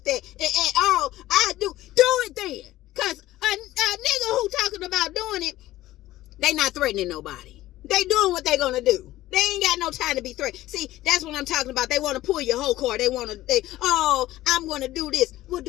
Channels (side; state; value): right; quieter; 15.6 dB